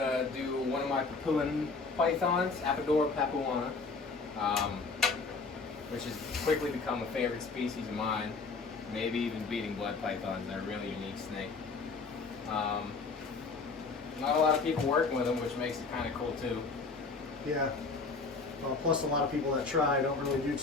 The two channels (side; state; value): right; quieter; 4.2 dB